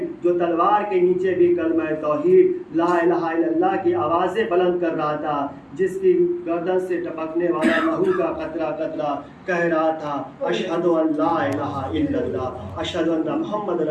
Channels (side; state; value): both; identical; correlation 1.00